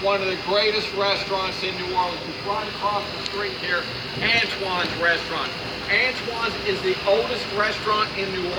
one of the greatest restaurants in New Orleans. It's right across the street here, Antoine's Restaurant. Antoine's is the oldest restaurant in New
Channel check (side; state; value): both; identical; correlation 1.00